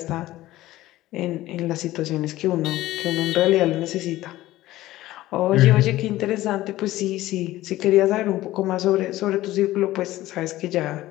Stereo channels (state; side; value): quieter; right; 16.1 dB